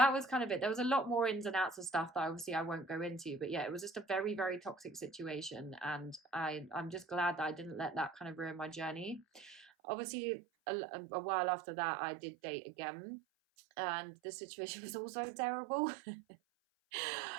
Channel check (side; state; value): left; drops out; at 9.7 s